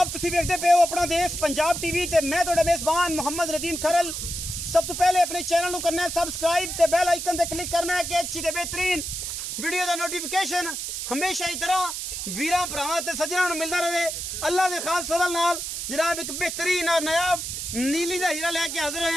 तुसी देखते पे हो अपना देश पंजाब टीवी ते मैं तुहाडा मेजबान मोहम्मद नदीम खरल। सब तो पहले अपने चैनल को करना है सबसक्राइब ते बेल आइकन ते क्लिक करना है कि अच्छी ते बेहतरीन वीडियो का नोटिफिकेशन हमेशा ही तरह वीरां भरावां ते सज्जनां नूं मिलदा रहे। अल्लाह दे खास फजल नाल जनाब एक बेहतरीन और नायाब नीली का हीरा लेके हाजिर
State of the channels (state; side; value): noise; right; hiss, 5 dB below the sound